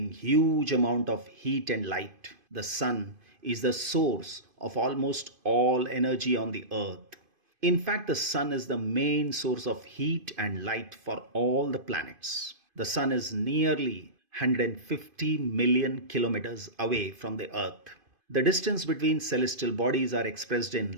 huge amount of heat and light. The sun is the source of almost all energy on the earth. In fact, the sun is the main source of heat and light for all the planets. The sun is nearly 150 million kilometers away from the earth. The distance between celestial bodies are expressed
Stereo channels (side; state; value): left; late; 2.5 ms